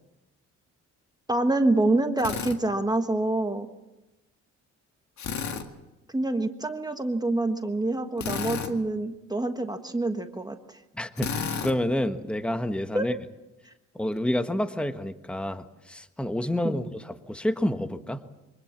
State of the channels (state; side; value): normal; both; correlation 0.82